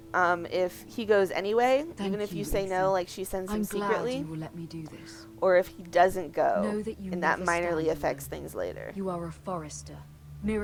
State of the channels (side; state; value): both; identical; correlation 1.00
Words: if he goes anyway, Thank even if you say Ethan. no, like she sends him I'm glad secretly, you will let me do this. or if he doesn't go, Know that you and that never minorly stand affects alone. things later. You are a forester.